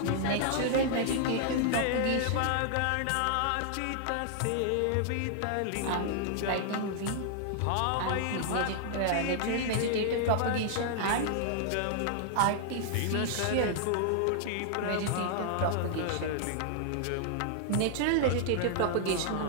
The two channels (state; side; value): different; both; correlation -0.01